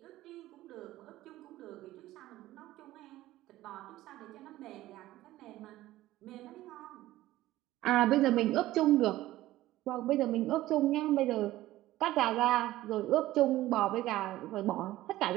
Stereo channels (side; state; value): left; quieter; 15.8 dB